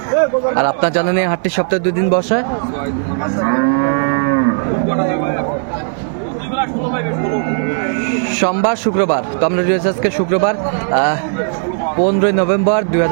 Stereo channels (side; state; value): left; silent; 66 dB below the other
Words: আর আপনার জানেন এই হাটটি সপ্তাহে 2 দিন বসে, সোমবার শুক্রবার। তো আমরা রয়েছে আজকে শুক্রবার 15 নভেম্বর